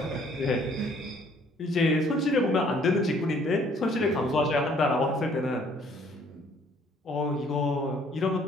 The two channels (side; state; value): both; normal; correlation 0.61